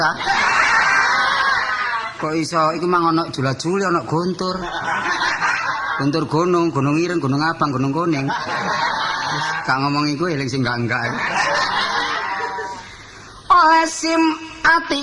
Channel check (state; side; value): identical; both; correlation 1.00